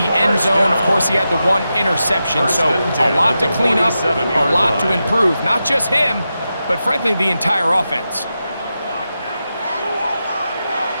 end zone, of course, he had the one interception. So a lot to clean up, a lot to improve. Not just him, but frankly, the entire offense.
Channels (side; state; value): both; inverted; correlation -0.89